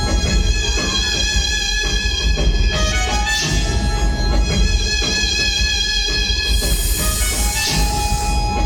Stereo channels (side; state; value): both; identical; correlation 1.00